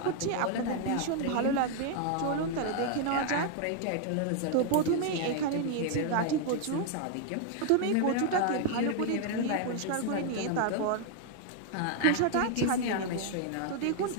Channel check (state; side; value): different; both; correlation 0.00